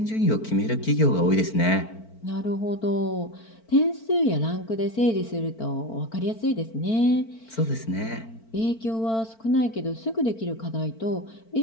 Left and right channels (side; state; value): right; late; 4.5 ms